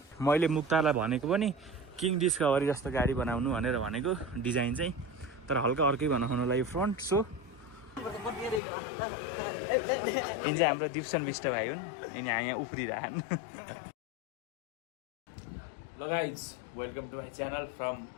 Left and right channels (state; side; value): drops out; right; at 8.6 s